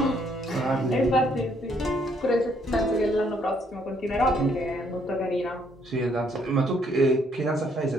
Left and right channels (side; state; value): both; normal; correlation 0.68